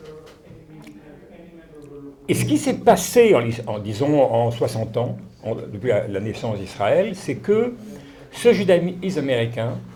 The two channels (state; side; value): identical; both; correlation 1.00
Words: et ce qui s'est passé en 60 ans, depuis la naissance d'Israël, c'est que ce judaïsme américain,